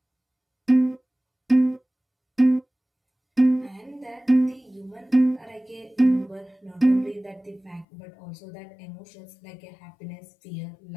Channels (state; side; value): drops out; right; at 7.9 s